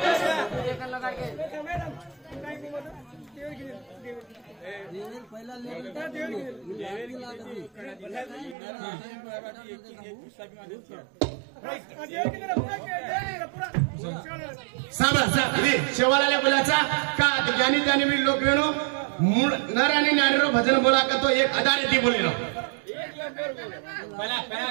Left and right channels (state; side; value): drops out; left; at 8.6 s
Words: शेवाला बोलाचा का ज्ञानी त्याने मी लोक वेणो मूळ नर आणि नारीरो भजन बोला का तो एक आधार ती बोलेलो पहला